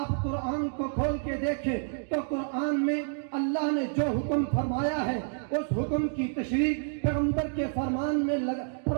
قرآن کو کھول کے دیکھیں تو قرآن میں اللہ نے جو حکم فرمایا ہے اس حکم کی تشریح پیغمبر کے فرمان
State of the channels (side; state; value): left; silent; digital silence